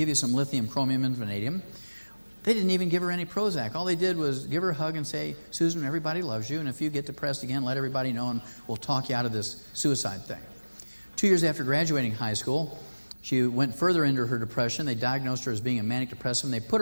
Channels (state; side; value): inverted; both; correlation -1.00